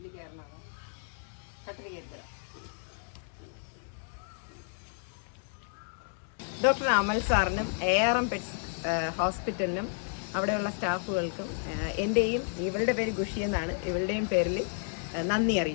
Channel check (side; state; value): right; silent; 57 dB below the other